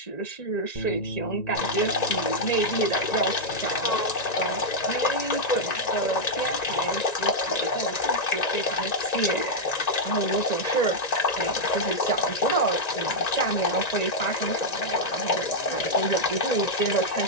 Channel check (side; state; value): right; late; 1.9 ms